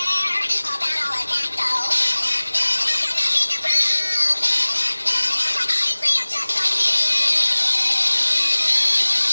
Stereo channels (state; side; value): inverted; both; correlation -1.00